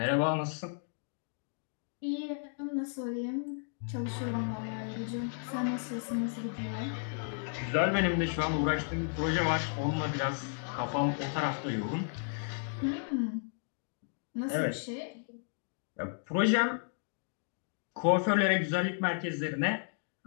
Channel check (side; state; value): right; silent; digital silence